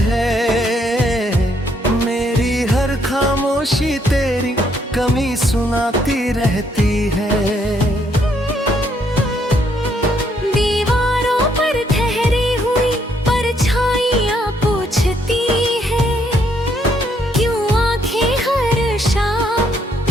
है, मेरी हर खामोशी तेरी कमी सुनाती रहती है। दीवारों पर ठहरी हुई परछाइयाँ पूछती है, क्यों आंखें हर शाम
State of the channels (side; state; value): both; normal; correlation 0.71